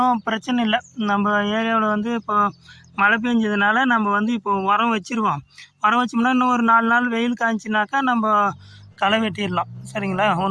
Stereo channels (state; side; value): identical; both; correlation 1.00